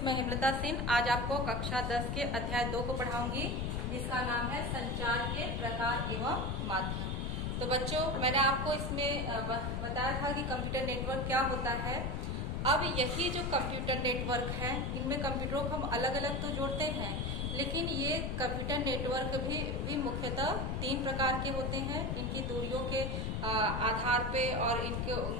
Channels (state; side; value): noise; left; rumble, 1 dB below the sound